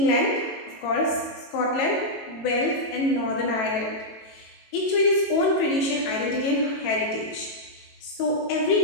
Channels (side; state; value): right; late; 18 ms